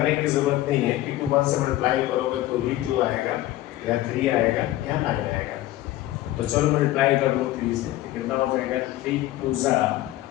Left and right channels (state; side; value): quieter; right; 15.4 dB